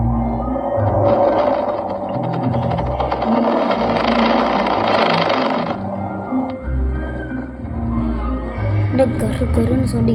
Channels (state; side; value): identical; both; correlation 1.00